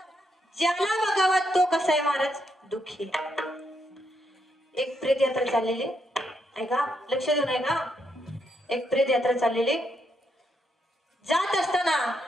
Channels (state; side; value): normal; both; correlation 0.78